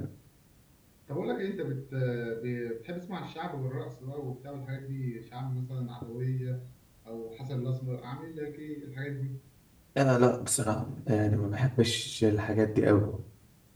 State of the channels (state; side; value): identical; both; correlation 1.00